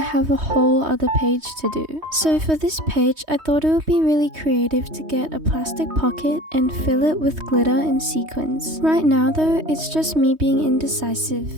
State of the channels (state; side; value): late; left; 3.2 ms